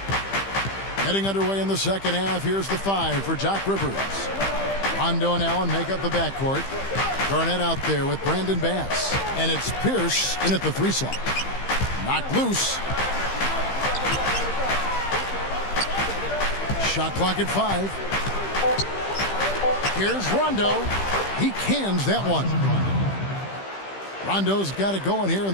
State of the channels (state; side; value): late; right; 15 ms